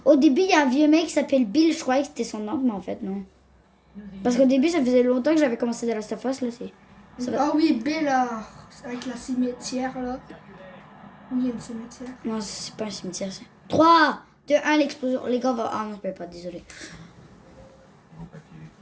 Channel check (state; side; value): identical; both; correlation 1.00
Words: Au début, il y a un vieux mec qui s'appelle Bill. Je croyais que c'était son oncle, mais en fait, non. Parce qu'au début, ça faisait longtemps que j'avais commencé The Last of Us, là, c'est. Ça va. Ah oui, Bella, avec la cimetière, là. Oui, il y a une cimetière. Non, c'est pas un cimetière, c'est. 3, 2, 1, l'explosion. Les gars, va. Ah non, je peux pas, désolé.